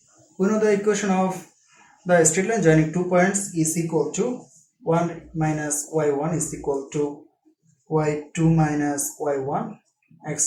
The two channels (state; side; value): identical; both; correlation 1.00